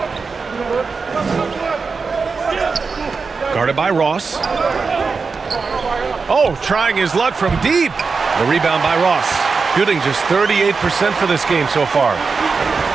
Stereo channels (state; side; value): quieter; left; 4.8 dB